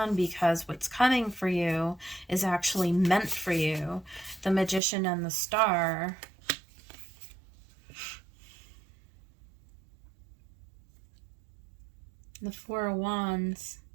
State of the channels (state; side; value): drops out; left; at 4.8 s